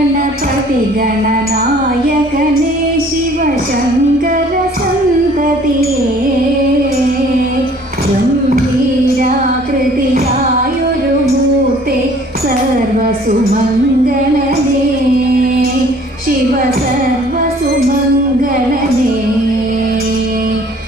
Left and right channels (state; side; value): normal; both; correlation 0.54